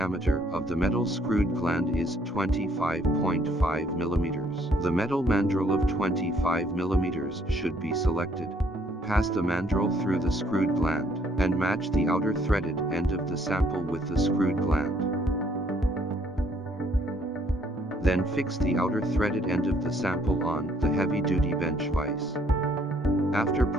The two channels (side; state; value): both; normal; correlation 0.65